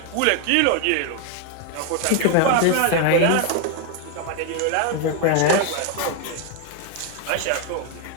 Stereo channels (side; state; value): both; different; correlation 0.01